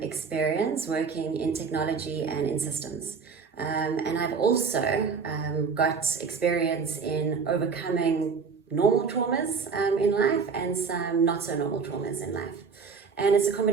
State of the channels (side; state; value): left; quieter; 5.5 dB